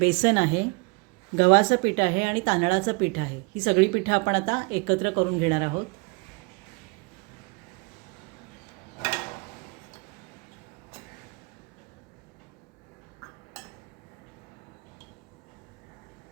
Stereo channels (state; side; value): quieter; left; 29.7 dB